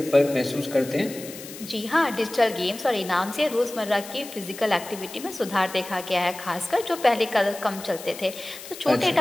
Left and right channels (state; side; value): noise; left; hiss, 14 dB below the sound